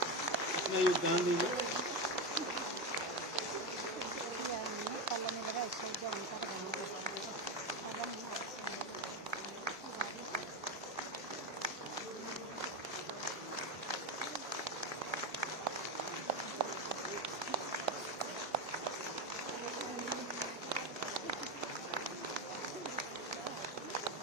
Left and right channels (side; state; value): both; normal; correlation 0.14